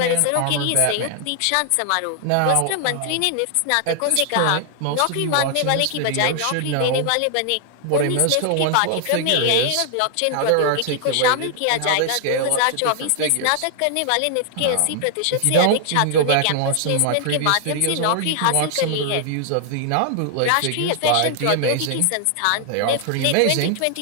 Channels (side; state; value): both; different; correlation 0.00